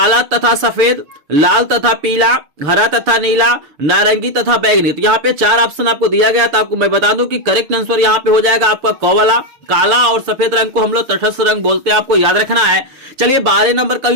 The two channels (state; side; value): late; left; 6.8 ms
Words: तथा सफेद, लाल तथा पीला, हरा तथा नीला, नारंगी तथा बैंगनी। तो यहाँ पे 4 ऑप्शन आपको दिया गया, तो आपको मैं बता दूं कि करेक्ट आंसर यहाँ पे हो जाएगा आपका क वाला। काला और सफेद रंग को हम लोग तटस्थ रंग बोलते हैं, आपको याद रखना है। चलिए 12 नंबर का